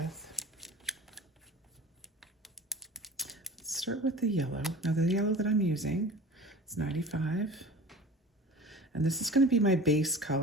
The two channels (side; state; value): both; normal; correlation 0.39